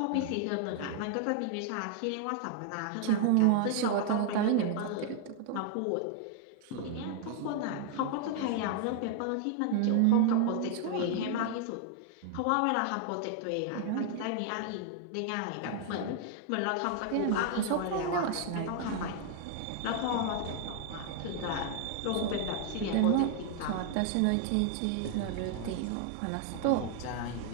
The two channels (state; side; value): different; both; correlation 0.00